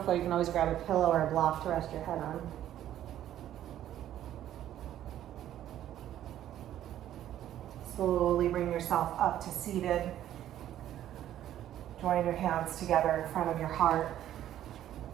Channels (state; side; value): quieter; left; 12.0 dB